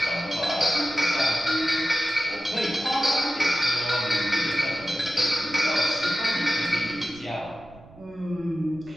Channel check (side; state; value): right; noise; rumble, 22 dB below the sound